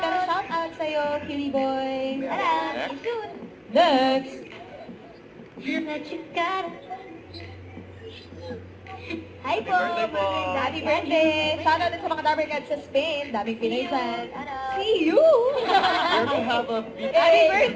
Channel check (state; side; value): identical; both; correlation 1.00